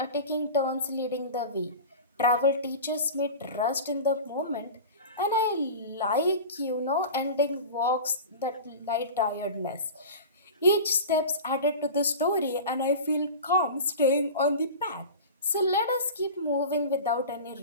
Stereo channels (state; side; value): inverted; both; correlation -0.33